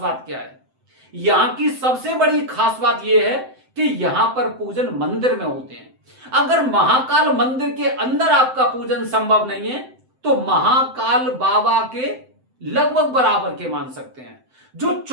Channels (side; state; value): left; late; 7.8 ms